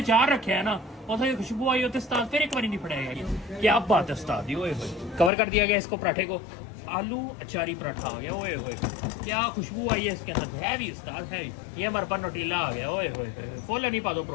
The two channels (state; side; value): drops out; right; at 5.3 s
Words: चार रखे है ना, उसे खुशबू आई होती उस्ताद फिर एक बार नहीं फड़ाएगा। क्या बात है उस्ताद दी। ओए होए, कवर कर दिया गया इसको पराठे को। आलू अचारी पराठा आ गया। ओए होए, क्या खुशबू आई है इसके अंदर। हैवी उस्ताद, हैवी। ये हमारे पास नोटीला आ गया। ओए होए, फुल नहीं पा दो